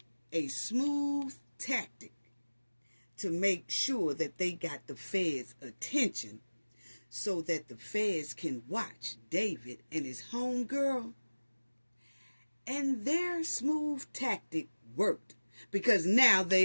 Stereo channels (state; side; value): inverted; both; correlation -1.00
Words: a smooth tactic to make sure that they got the feds' attention so that the feds can watch David and his homegirl. And their smooth tactic worked because now